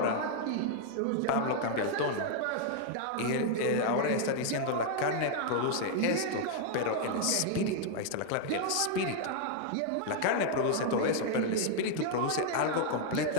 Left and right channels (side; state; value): both; different; correlation 0.00